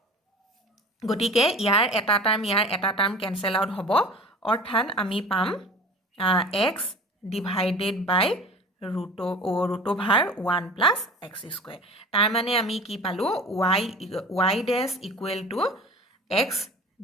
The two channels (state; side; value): normal; both; correlation 0.40